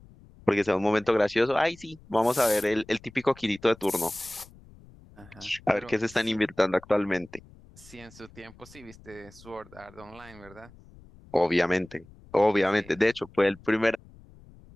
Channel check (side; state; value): left; noise; rumble, 23 dB below the sound